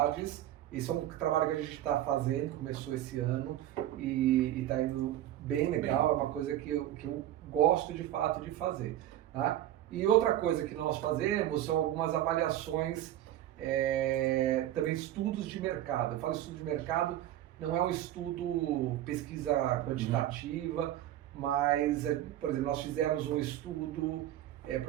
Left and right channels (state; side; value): quieter; left; 12.9 dB